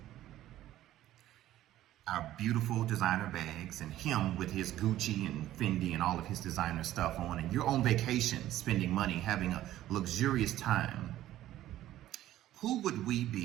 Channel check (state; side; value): quieter; left; 13.8 dB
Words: our beautiful designer bags, and him with his Gucci and Fendi and all of his designer stuff on, and you're on vacation, spending money, having a luxurious time. Who would we